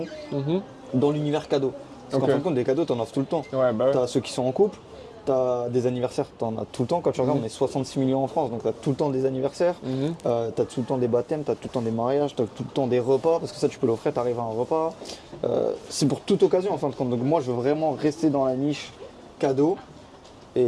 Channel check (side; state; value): both; identical; correlation 1.00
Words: Mhm. dans l'univers cadeau. Parce Ok. qu'en fin de compte, des cadeaux, t'en offres tout le temps. Ouais, bah ouais. T'as ceux qui sont en couple, t'as des anniversaires, t'en as tout le temps. Quand tu regardes, on est 66 millions en France, donc t'as tout le temps des anniversaires, Mhm. t'as tout le temps des baptêmes, t'as tout le temps des mariages, t'as tout le temps des repas, parce que ça tu peux l'offrir, t'arrives à un repas. C'est pour toute occasion en fin de compte. Donc moi je veux vraiment rester dans la niche cadeau.